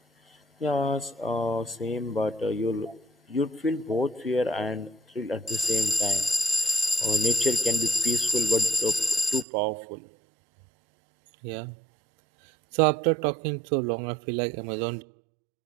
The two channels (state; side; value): drops out; left; at 9.5 s